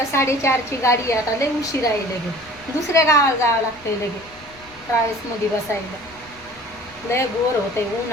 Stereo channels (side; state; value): left; noise; rumble, 24 dB below the sound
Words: 4:30ची गाडी. आता लय उशीर आहे. लगे दुसऱ्या गावाला जावं लागतंय. लगे ट्रॅव्हल्समध्ये बसायला लय बोर होतंय.